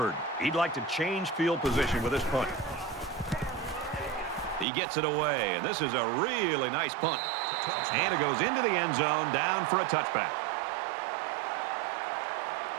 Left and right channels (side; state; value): left; drops out; at 4.7 s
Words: he'd like to change field position with this punt. He gets it away, and this is a really nice punt. Touchback. And it goes into the end zone, down for a touchback.